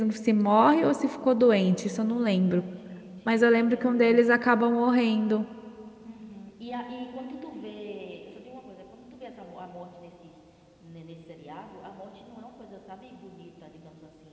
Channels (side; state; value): both; identical; correlation 1.00